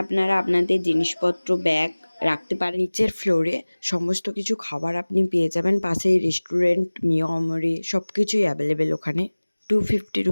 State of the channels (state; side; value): inverted; both; correlation -1.00